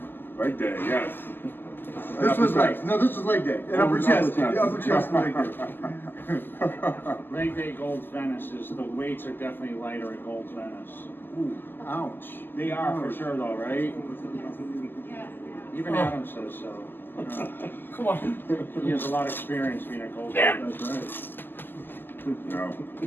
Leg day, yes. This was leg. No, this was leg day. And upper chest. The upper chest leg day. Leg day Gold's Venice is, the weights are definitely lighter at Gold's Venice. Ooh, ouch. They are for sure though, right? Even Adam says so. Come on. He has a lot of experience being at Gold's Venice. That's right. No.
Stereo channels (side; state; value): right; late; 0.094 ms